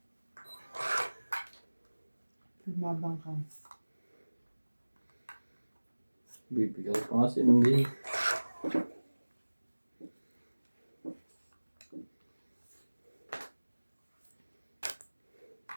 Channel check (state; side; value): inverted; both; correlation -1.00